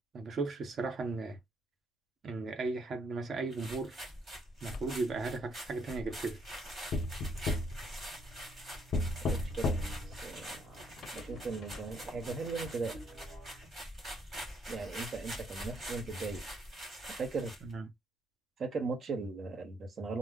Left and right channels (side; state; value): both; normal; correlation 0.70